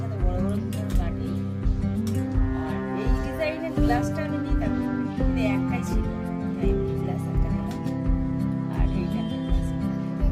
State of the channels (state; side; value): identical; both; correlation 1.00